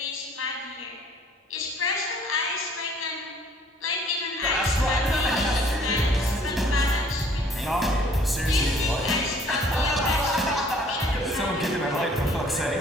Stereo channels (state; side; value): normal; both; correlation 0.57